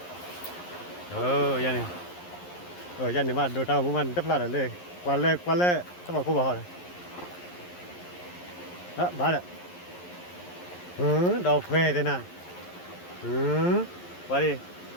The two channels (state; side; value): late; right; 11 ms